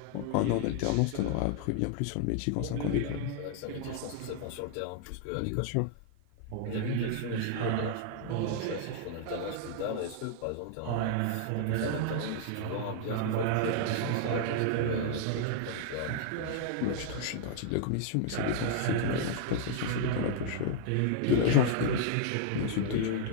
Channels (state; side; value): different; both; correlation -0.01